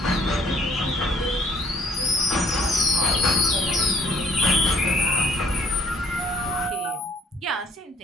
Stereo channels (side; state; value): both; normal; correlation 0.59